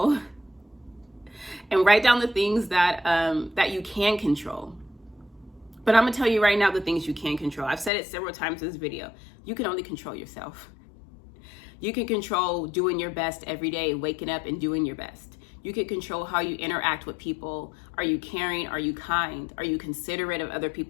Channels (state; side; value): drops out; right; at 7.9 s